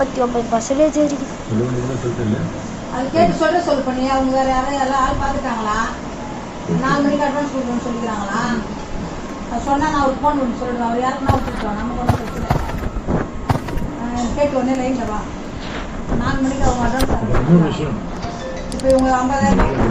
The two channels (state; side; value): identical; both; correlation 1.00